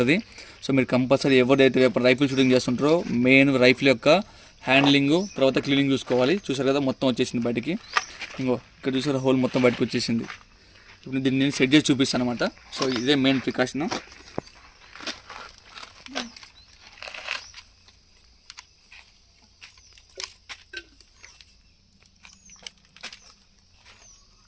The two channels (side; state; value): both; identical; correlation 1.00